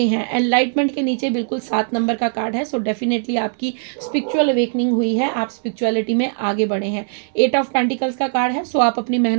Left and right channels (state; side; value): silent; left; 62 dB below the other